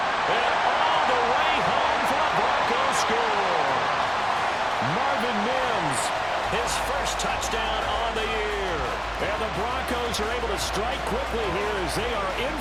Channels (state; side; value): identical; both; correlation 1.00